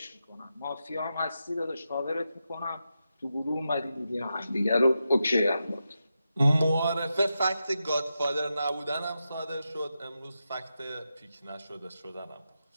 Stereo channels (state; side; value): inverted; both; correlation -0.88